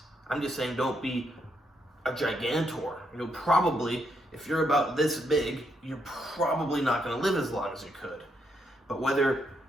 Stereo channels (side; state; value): both; normal; correlation 0.78